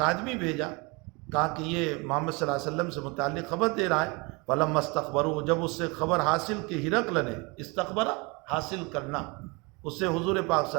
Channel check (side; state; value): left; quieter; 28.3 dB